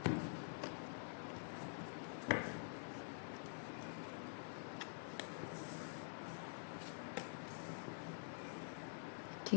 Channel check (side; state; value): right; silent; digital silence